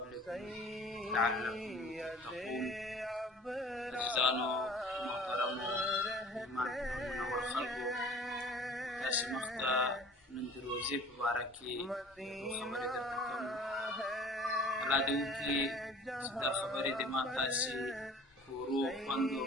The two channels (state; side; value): normal; both; correlation 0.47